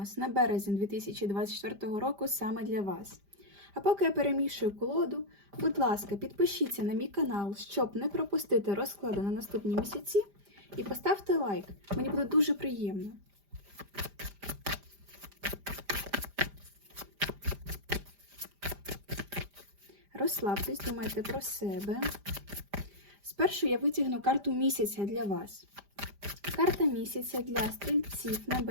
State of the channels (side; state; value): left; late; 5.0 ms